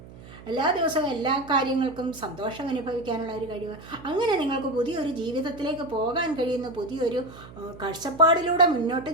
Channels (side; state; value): right; noise; hum, 18 dB below the sound